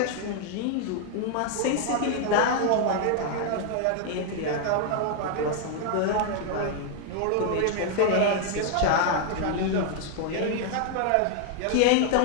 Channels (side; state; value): both; different; correlation 0.00